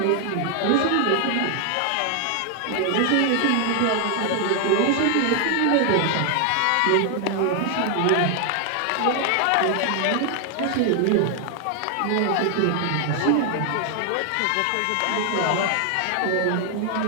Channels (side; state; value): both; different; correlation 0.00